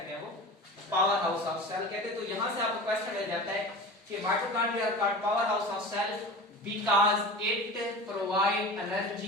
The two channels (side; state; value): both; normal; correlation 0.33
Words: हैं, वो पावर हाउस ऑफ सेल कहते हैं। तो यहां से आपको क्वेश्चन मिल जाता है कि mitochondria called power house of cell because it provide